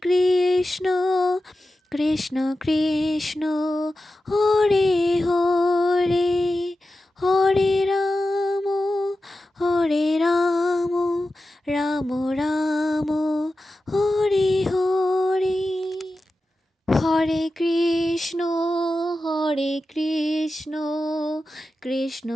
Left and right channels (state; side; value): normal; both; correlation 0.93